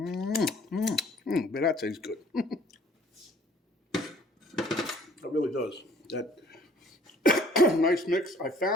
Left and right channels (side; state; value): both; normal; correlation 0.56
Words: that tastes good. It really does. That nice mix. I